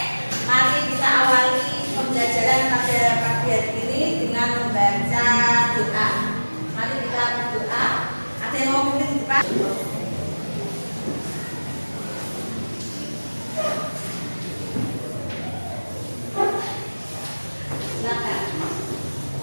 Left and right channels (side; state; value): both; inverted; correlation -1.00